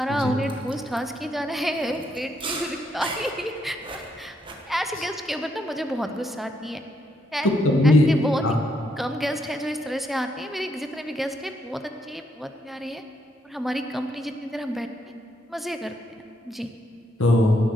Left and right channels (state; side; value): normal; both; correlation 0.76